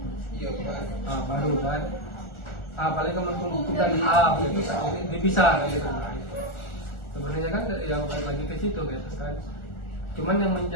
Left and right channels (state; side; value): late; right; 1.4 ms